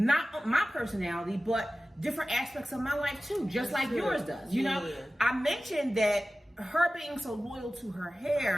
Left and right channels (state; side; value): normal; both; correlation 0.96